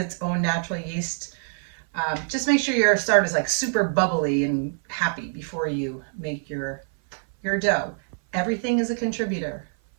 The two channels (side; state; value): left; silent; 59 dB below the other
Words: own natural yeast, just make sure your starter is super bubbly and happy before you make your dough. Everything is a contributor.